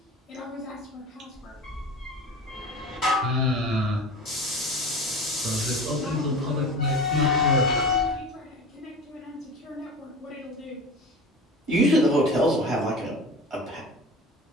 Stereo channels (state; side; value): normal; both; correlation 0.34